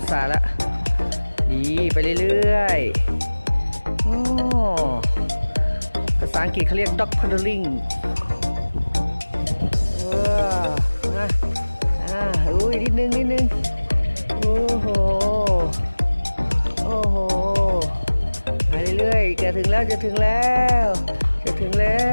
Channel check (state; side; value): inverted; both; correlation -1.00